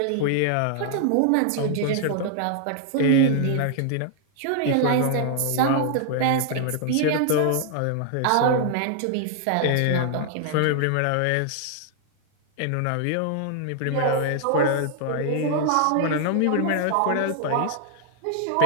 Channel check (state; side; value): different; both; correlation 0.00